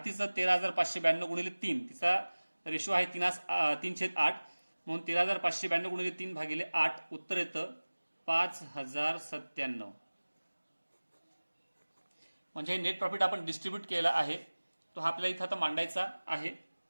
13,592 गुणिले 3 तिचा रेशो आहे 3/8 म्हणून 13,592 गुणिले 3 भागिले 8 उत्तर येतं 5,097. म्हणजे हे नेट प्रॉफिट आपण डिस्ट्रीब्यूट केला आहे तो हा आपल्याला इथं आता मांडायचा आहे.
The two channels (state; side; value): inverted; both; correlation -1.00